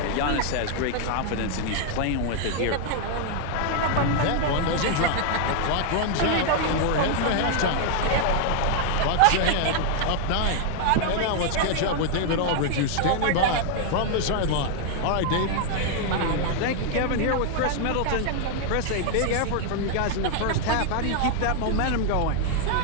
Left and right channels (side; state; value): both; different; correlation 0.00